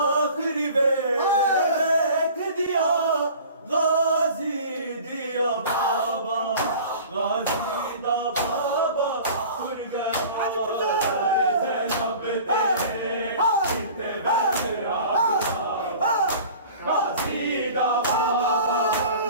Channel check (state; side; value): inverted; both; correlation -0.43